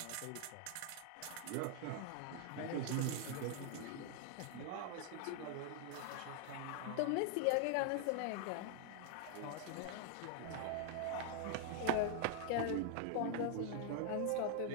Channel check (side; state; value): both; different; correlation 0.00